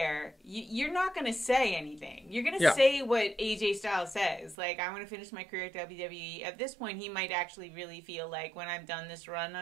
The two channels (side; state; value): left; drops out; at 4.5 s